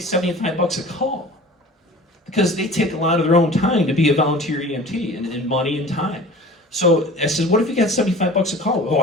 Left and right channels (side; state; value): both; normal; correlation 0.41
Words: a call, because they take a lot of their own time to be a volunteer EMT, and money and time. So I said, what if you got $75 a call? Oh,